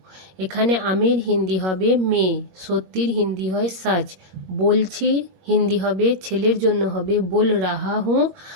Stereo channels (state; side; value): late; left; 21 ms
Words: এখানে আমির হিন্দি হবে মে, সত্যির হিন্দি হয় সচ, বলছি হিন্দি হবে ছেলের জন্য হবে बोल रहा हूँ,